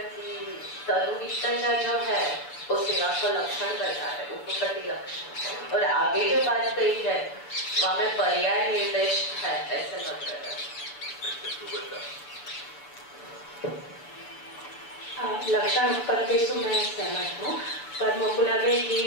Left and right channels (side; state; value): right; late; 6.9 ms